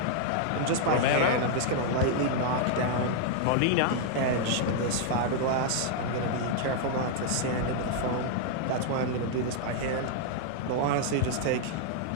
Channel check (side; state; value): both; different; correlation -0.01